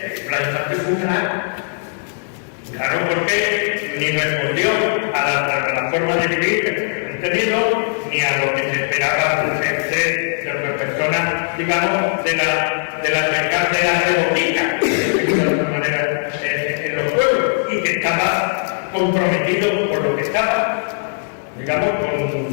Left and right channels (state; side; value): silent; right; digital silence